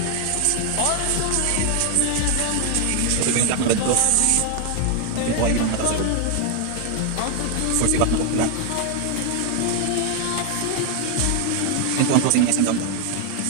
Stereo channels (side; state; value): both; different; correlation 0.01